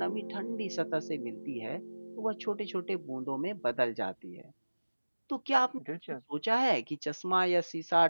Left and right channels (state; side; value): inverted; both; correlation -1.00